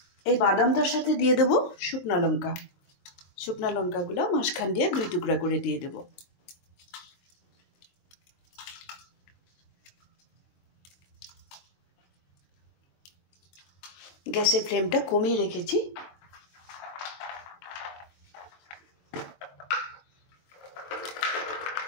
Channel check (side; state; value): right; late; 23 ms